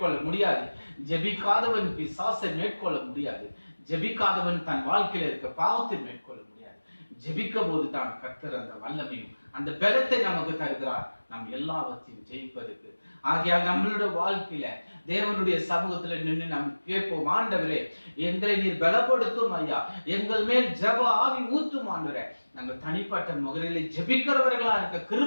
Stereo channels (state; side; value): inverted; both; correlation -1.00